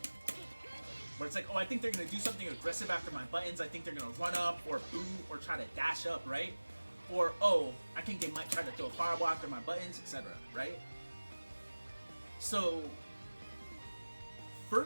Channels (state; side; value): inverted; both; correlation -1.00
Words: Where it's like, oh, I think they're gonna do something aggressive after my buttons. I think they're gonna run up or boot or try to dash up, right? Or, oh, I think they might try to throw a fireball after my buttons, etc., right? So, for